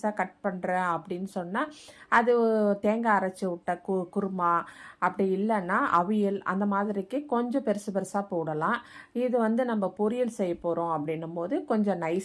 கட் பண்ணுறேன் அப்படின்னு சொன்னால் அது தேங்காய் அரைச்சி விட்ட குருமா, அப்படி இல்லைன்னா அவியல், அந்த மாதிரிக்கு கொஞ்சம் பெருசு பெருசாக போடலாம். இது நம்ம பொரியல் செய்ய போகிறோம் அப்படின்னும் போது கொஞ்சம்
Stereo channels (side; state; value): both; identical; correlation 1.00